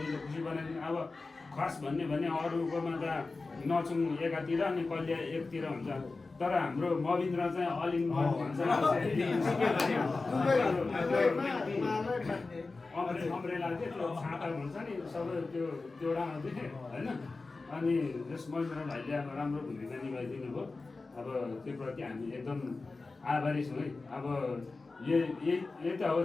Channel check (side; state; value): right; quieter; 3.7 dB